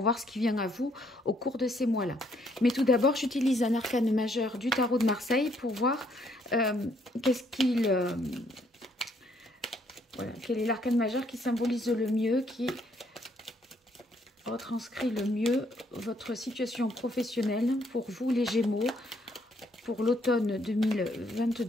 ce qui vient à vous au cours de ces mois-là. Mais tout d'abord, j'utilise un arcane majeur du tarot de Marseille pour voir qu'est-ce qu'il... voilà, quel est l'arcane majeur qui symbolise le mieux, qui retranscrit le mieux votre situation professionnelle pour vous les Gémeaux, pour l'automne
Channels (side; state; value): both; normal; correlation 0.69